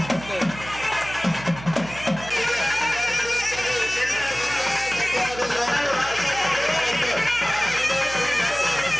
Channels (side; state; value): right; noise; hum, 15 dB below the sound